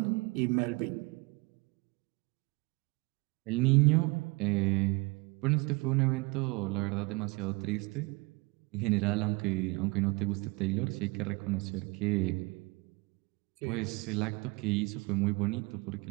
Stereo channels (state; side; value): quieter; left; 26.2 dB